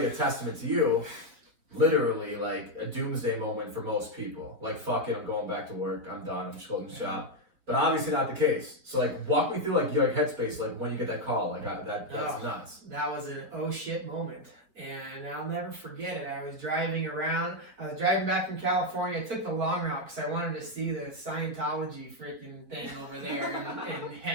a testament to you, literally like a doomsday moment for most people. Like, fuck it, I'm going back to work, I'm done, I'm just closing shop. But obviously not the case. So like, walk me through like your headspace, like when you get that call, like that's nuts. That was an oh shit moment, and I'll never forget it. I was driving back from California. I took the long route because I wanted to see the Scientology freaking thing over there in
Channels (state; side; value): late; left; 4.7 ms